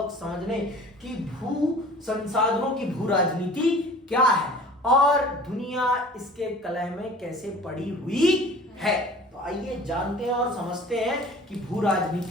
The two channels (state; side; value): normal; both; correlation 0.45